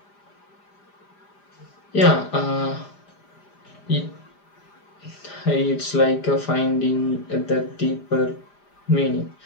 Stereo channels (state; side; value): late; right; 5.0 ms